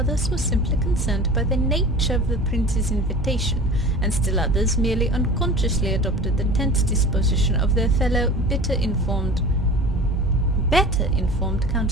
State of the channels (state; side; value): normal; both; correlation 0.38